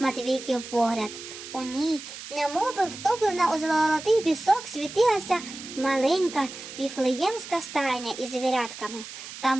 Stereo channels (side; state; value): right; noise; hiss, 12 dB below the sound